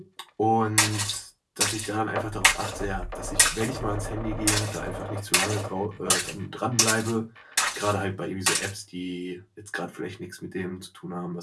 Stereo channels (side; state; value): both; identical; correlation 1.00